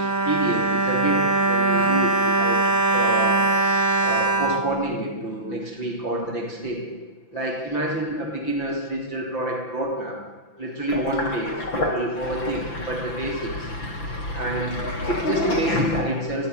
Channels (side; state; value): right; late; 5.9 ms